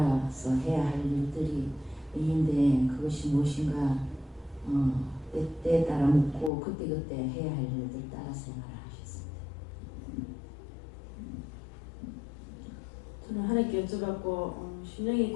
해야 할 일들이 있는데, 그것이 무엇인가 때에 따라 묻고 그때그때 해야 할 일들 따라 생활을 하셨습니다. 저는 하나님께 여쭤봤고, 심령이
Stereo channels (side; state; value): right; drops out; at 6.5 s